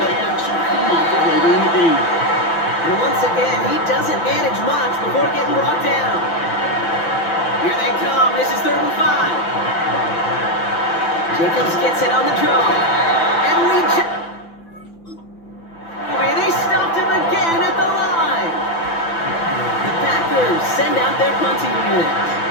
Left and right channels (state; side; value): late; right; 6.0 ms